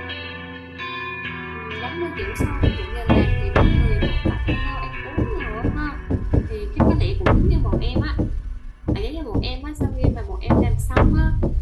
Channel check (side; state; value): both; identical; correlation 1.00